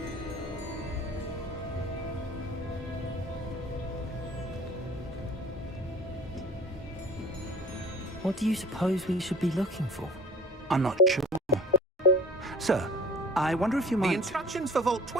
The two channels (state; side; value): normal; both; correlation 0.45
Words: What do you suppose we should be looking for? I'm not sure. Sir, I wonder if you The might... instructions for Vault